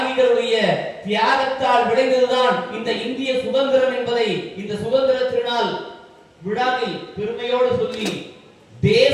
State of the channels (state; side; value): identical; both; correlation 1.00